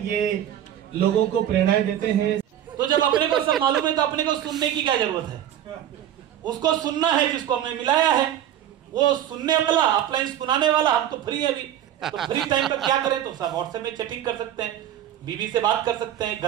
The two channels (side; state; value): left; quieter; 11.1 dB